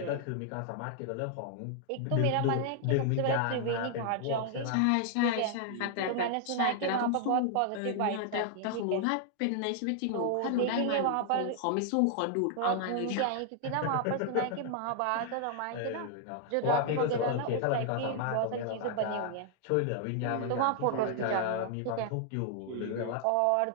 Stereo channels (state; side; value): different; both; correlation 0.00